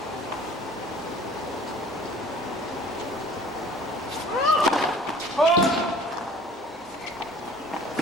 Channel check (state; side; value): normal; both; correlation 0.49